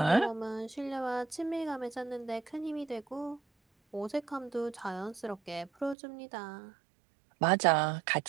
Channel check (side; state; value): left; drops out; at 6.0 s